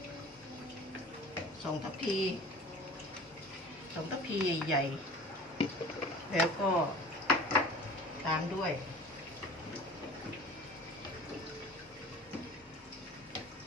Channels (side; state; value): both; normal; correlation 0.41